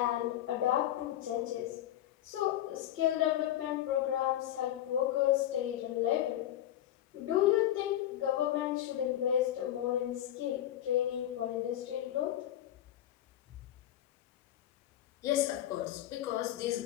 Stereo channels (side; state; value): right; quieter; 12.4 dB